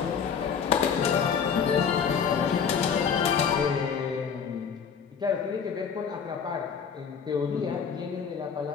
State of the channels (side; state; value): right; quieter; 6.8 dB